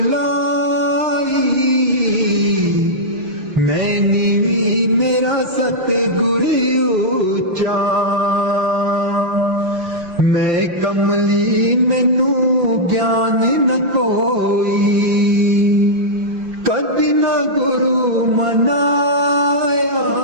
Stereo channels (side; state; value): left; late; 5.8 ms